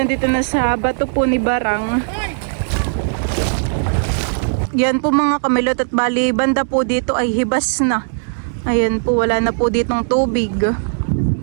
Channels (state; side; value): silent; left; 66 dB below the other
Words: na sa bato po ni Barang. Yan po mga kamilot at bali banda po dito ay hibas na. Ayan po, wala na po ditong tubig.